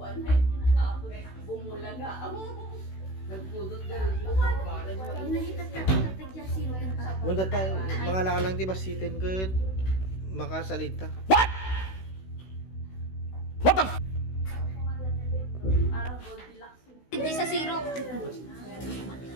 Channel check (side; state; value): right; late; 16 ms